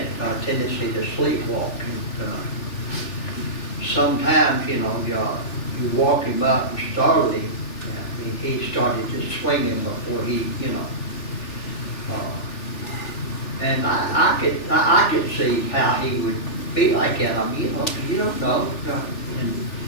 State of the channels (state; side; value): late; right; 3.4 ms